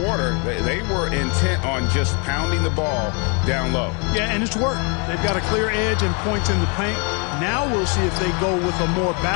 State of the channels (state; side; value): quieter; right; 35.2 dB